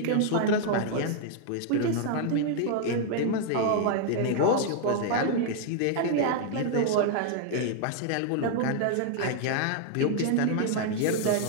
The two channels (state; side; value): different; both; correlation 0.00